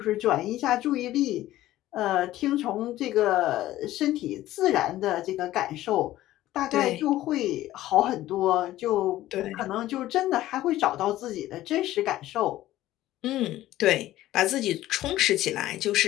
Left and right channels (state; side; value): quieter; right; 14.9 dB